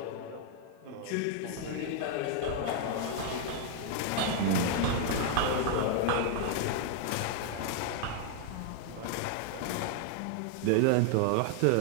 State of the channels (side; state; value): both; different; correlation 0.00